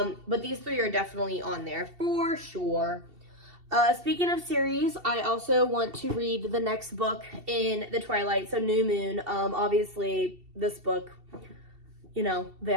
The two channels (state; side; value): late; left; 2.7 ms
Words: these 3 are definitely on there for sure. Speaking of series, I also want to read the next book in the Twilight, so New Moon. Obviously, this book,